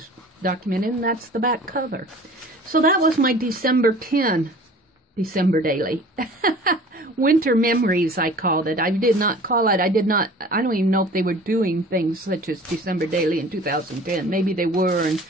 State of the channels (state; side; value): normal; both; correlation 0.45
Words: documented, and that's the back cover. So that was my December 10 December daily. Winter memories, I called it. I did not call it, I don't even know if they were doing things such as December daily in 2010. Maybe they were, and